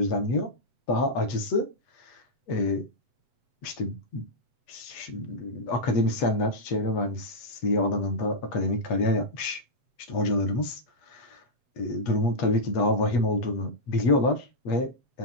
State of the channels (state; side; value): late; right; 8.3 ms